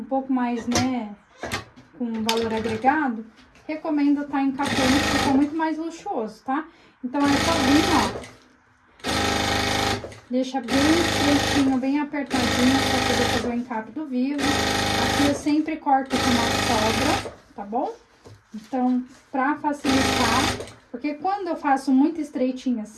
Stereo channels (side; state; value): both; identical; correlation 1.00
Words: pouco mais, né, com valor agregado, recomendo estar encapando, que fica muito mais luxuoso, tá? Então, é só vir, ó, deixa bem estreitinho, bem apertadinho para poder fazer o encape do vivo. Aqui eu sempre corto com uma sobra, tá bom? Então, pra facilitar, porque quando eu faço muito estreitinho